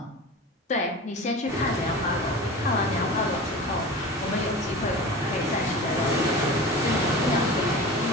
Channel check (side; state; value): both; normal; correlation 0.34